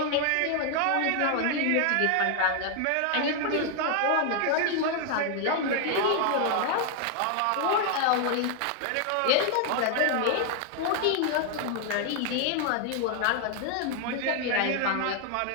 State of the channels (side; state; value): both; different; correlation 0.00